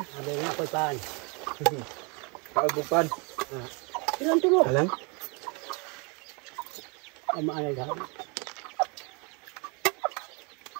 Sabi nga ako'y paan. Kaagupan. Ilan tulo? Alang? Ang maalay ha.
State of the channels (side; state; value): left; quieter; 32.3 dB